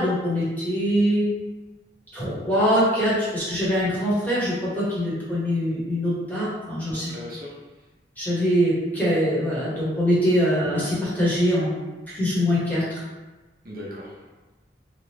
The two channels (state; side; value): normal; both; correlation 0.62